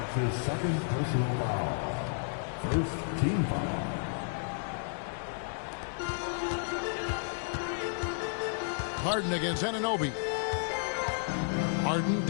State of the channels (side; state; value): right; silent; digital silence